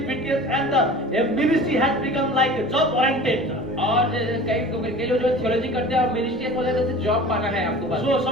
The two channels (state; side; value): normal; both; correlation 0.41